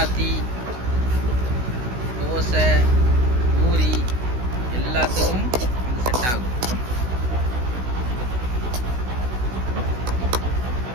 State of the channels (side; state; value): left; late; 16 ms